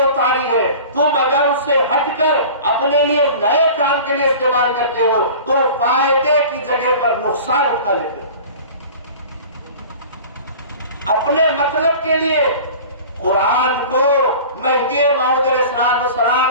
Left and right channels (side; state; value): both; inverted; correlation -0.39